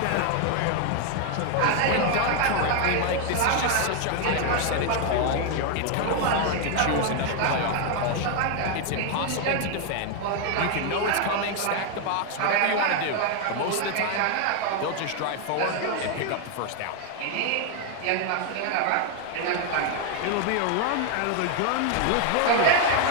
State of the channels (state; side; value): different; both; correlation 0.00